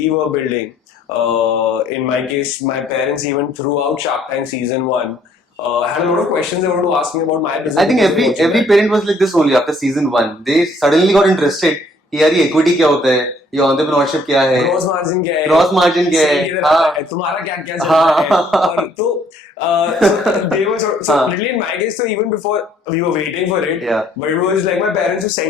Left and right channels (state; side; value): normal; both; correlation 0.62